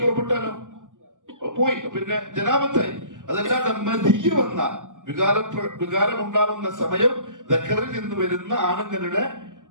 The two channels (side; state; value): left; late; 0.87 ms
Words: പുറപ്പെട്ടാലോ പോയി, പിന്നെ ജനാപത്തായി. അതല്ലാതെ മദിയ വന്നാൽ, വികാരമുണ്ടാകുന്ന സമയം ദക്കറിൽ നിന്ന് വരുന്ന ആണുങ്ങളുടെ